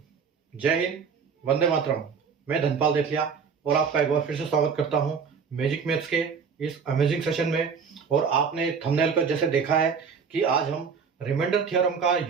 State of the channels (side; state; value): left; quieter; 6.0 dB